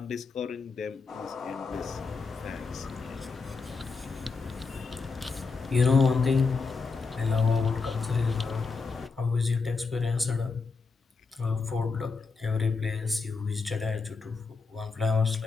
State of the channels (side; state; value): right; quieter; 4.5 dB